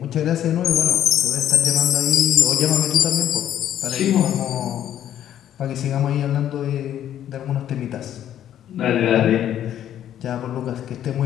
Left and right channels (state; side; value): quieter; right; 10.9 dB